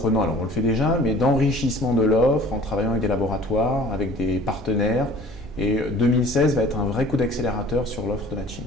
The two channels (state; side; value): normal; both; correlation 0.49